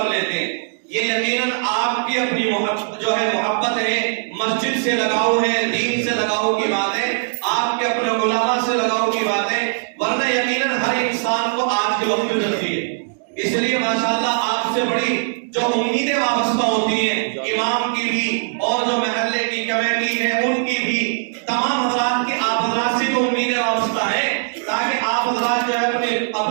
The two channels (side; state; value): left; silent; digital silence